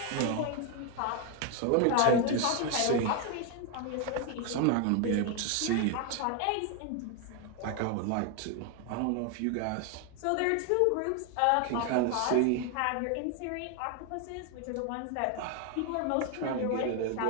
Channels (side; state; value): both; different; correlation 0.01